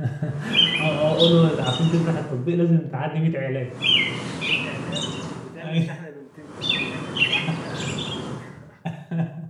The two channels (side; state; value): both; identical; correlation 1.00